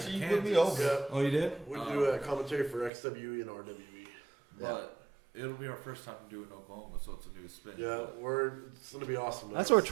sure you in put me Kansas, over. Yeah, Oh, you did? we do a commentary for XWE and RWE. But it'll be our first time to do it in Oklahoma, so it's a new spin. Yeah, it's gonna be awesome. That's what we're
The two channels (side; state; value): left; drops out; at 2.9 s